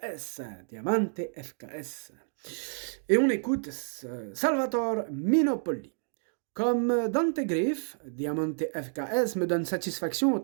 Diamante FKS. Et on écoute Salvatore Minopoli. Comme Dante Griff, Diamante FKS me donne satisfaction au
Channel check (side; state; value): left; silent; digital silence